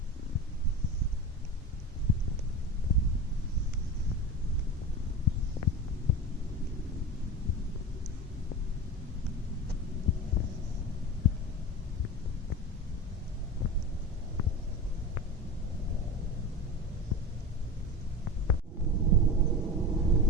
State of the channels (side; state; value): both; normal; correlation 0.28